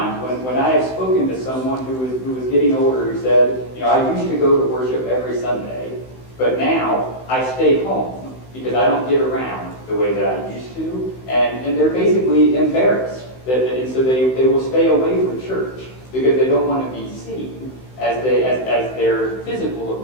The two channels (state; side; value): late; right; 16 ms